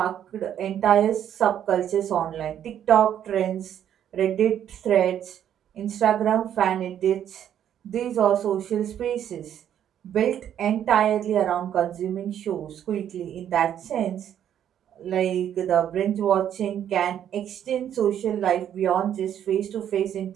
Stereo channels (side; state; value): left; quieter; 10.0 dB